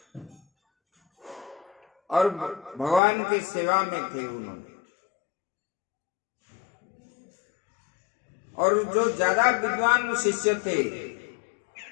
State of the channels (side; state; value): right; drops out; at 3.0 s